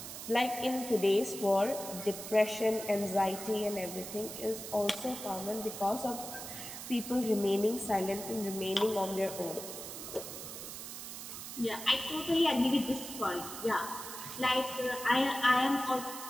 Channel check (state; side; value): noise; right; hiss, 9 dB below the sound